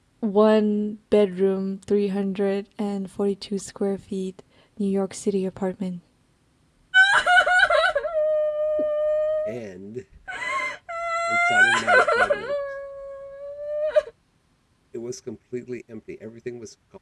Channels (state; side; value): identical; both; correlation 1.00